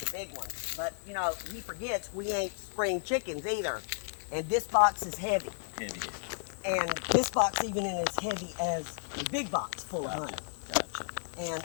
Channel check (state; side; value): silent; right; digital silence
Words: big ones. But, you know, he forgets we ain't spring chickens either. And this box is heavy. Heavy. And this box even is as heavy as the big box full of honey. Gotcha.